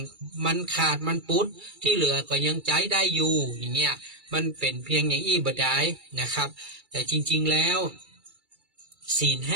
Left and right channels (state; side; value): late; left; 2.3 ms